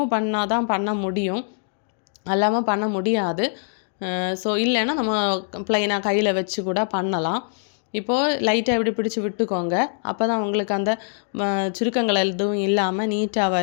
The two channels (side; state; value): right; silent; digital silence